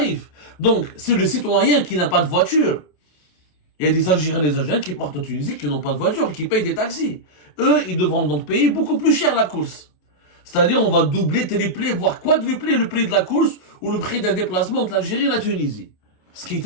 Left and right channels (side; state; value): right; late; 28 ms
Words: Donc, c'est le citoyen qui n'a pas de voiture. Il y a des Algériens et des Algériens qui partent en Tunisie, qui n'ont pas de voiture et qui payent des taxis. Eux, ils devront donc payer beaucoup plus cher la course. C'est-à-dire, on va doubler, tripler, voire quadrupler le prix de la course ou le prix d'un déplacement entre l'Algérie et la Tunisie. Ce qui